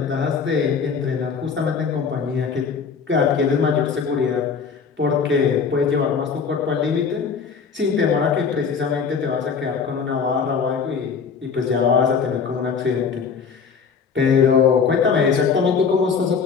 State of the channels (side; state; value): right; quieter; 5.9 dB